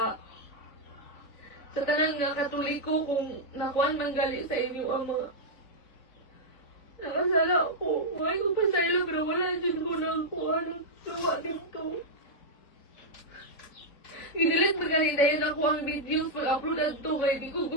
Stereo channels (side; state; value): right; late; 4.5 ms